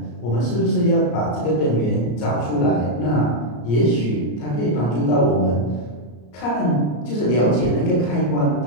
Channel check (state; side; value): late; right; 34 ms